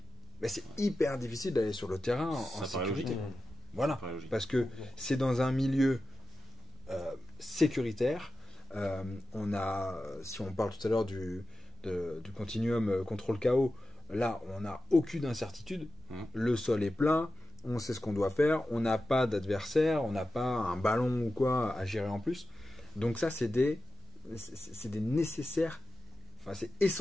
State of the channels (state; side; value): normal; both; correlation 0.92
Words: ben c'est hyper difficile d'aller sur le terrain en Ça paraît sécurité. logique. Voilà, Ça paraît logique. parce que c'est dans un milieu sécuritaire. Si on parle tout à l'heure du continuum contrôle KO, là on n'a aucune incertitude. Le sol est plat, on sait ce qu'on doit faire, on n'a pas d'adversaire, on n'a pas un ballon ou quoi à gérer en plus. Donc ça, c'est des nécessaires, enfin c'est